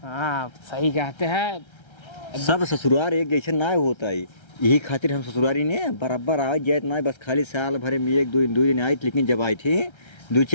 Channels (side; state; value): right; late; 1.3 ms